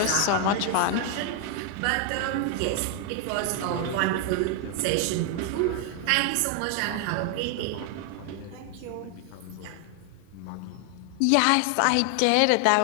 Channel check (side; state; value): both; different; correlation 0.00